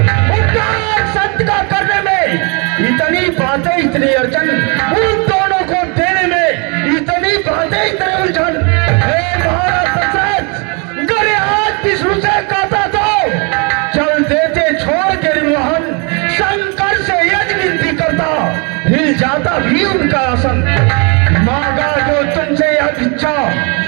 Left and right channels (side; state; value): left; quieter; 33.0 dB